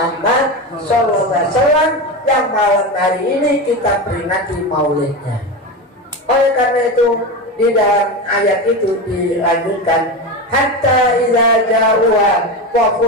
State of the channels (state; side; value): normal; both; correlation 0.20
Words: SAW yang malam hari ini kita peringati maulidnya. Oleh karena itu di dalam ayat itu dilanjutkan, hatta idza ja'uha wa